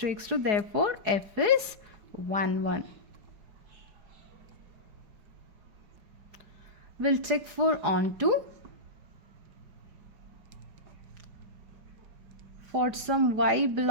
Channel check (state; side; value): late; left; 4.8 ms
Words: x2, therefore f is 1 1. We'll check for onto for some y